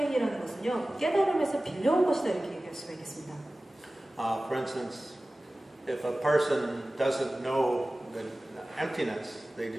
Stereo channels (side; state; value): both; normal; correlation 0.97